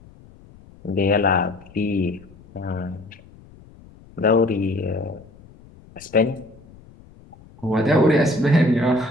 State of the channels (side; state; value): left; noise; rumble, 24 dB below the sound